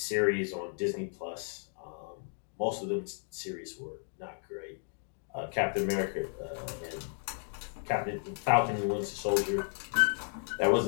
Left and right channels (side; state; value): right; silent; 55 dB below the other